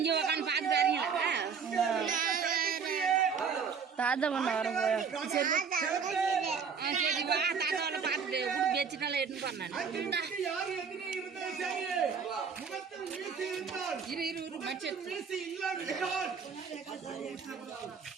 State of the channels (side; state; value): left; quieter; 6.2 dB